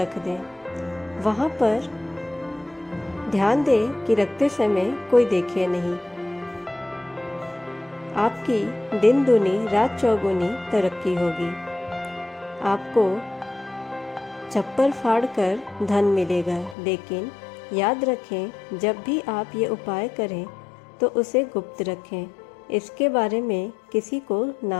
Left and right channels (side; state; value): right; drops out; at 16.8 s